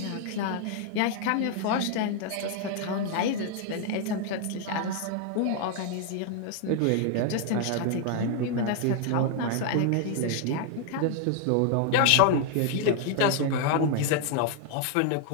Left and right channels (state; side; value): different; both; correlation 0.00